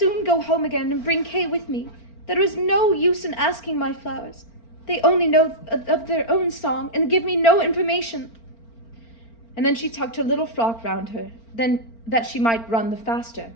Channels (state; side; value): late; right; 4.4 ms